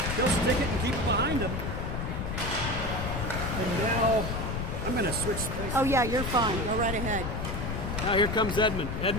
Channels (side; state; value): left; noise; rumble, 3 dB below the sound